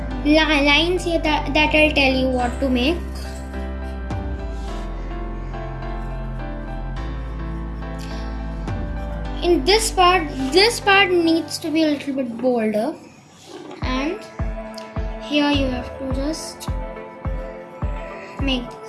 lines here that I'll tell you what to make. In this part needs to be a little bit bolder, and here you have to just make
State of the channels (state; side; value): identical; both; correlation 1.00